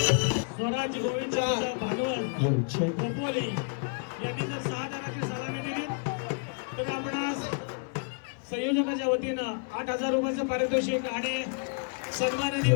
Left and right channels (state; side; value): quieter; right; 39.3 dB